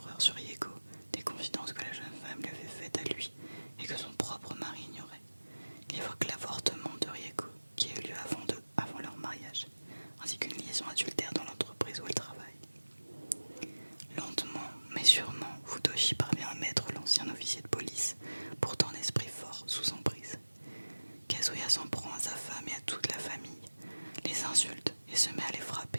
sur Rieko, des confidences que la jeune femme lui avait faites à lui et que son propre mari ignorait. Il évoque l'avortement de Rieko qui a eu lieu avant leur mariage, ainsi qu'une liaison adultère dans l'entreprise où elle travaille. Lentement, mais sûrement, Futoshi parvient à mettre l'ancien officier de police, pourtant d'esprit fort, sous emprise. Kazuya s'en prend à sa femme et à toute la famille, les insulte et se met à les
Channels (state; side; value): inverted; both; correlation -1.00